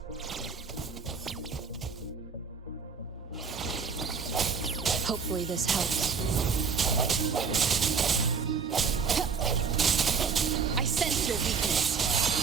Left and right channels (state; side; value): quieter; left; 5.6 dB